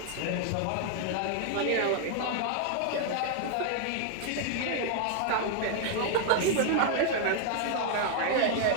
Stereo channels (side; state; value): both; different; correlation 0.00